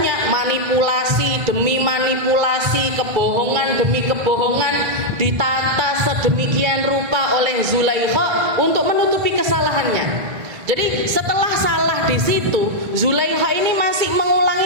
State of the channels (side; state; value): left; late; 2.3 ms